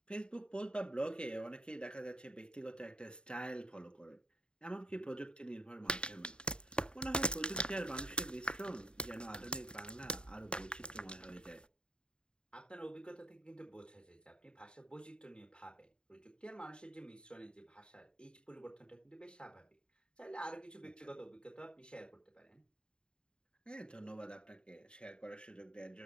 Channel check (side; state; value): right; late; 0.051 ms